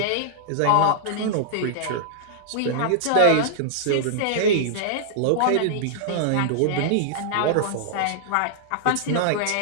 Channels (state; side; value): different; both; correlation -0.01